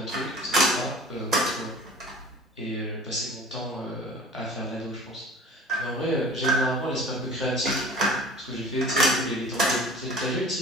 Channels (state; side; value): normal; both; correlation 0.44